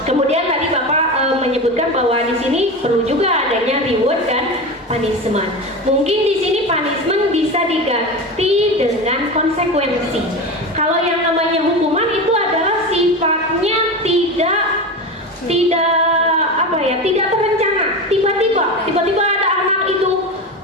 Kemudian tadi Bapak menyebutkan bahwa di sini perlu juga adanya reward dan punishment. Mungkin di sini punishment bisa diganti dengan konsekuensi. Kalau yang namanya hukuman itu adalah sifatnya tidak terencana. Tiba-tiba ada anak itu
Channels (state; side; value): normal; both; correlation 0.24